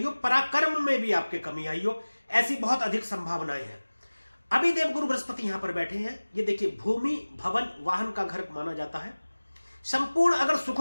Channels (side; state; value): both; inverted; correlation -1.00